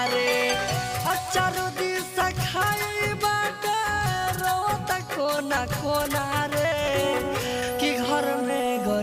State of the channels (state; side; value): identical; both; correlation 1.00